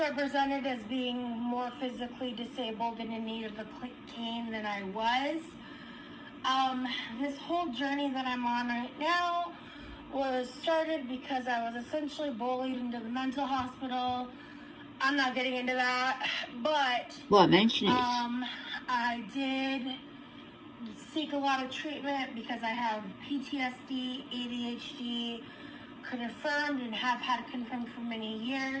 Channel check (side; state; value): both; identical; correlation 1.00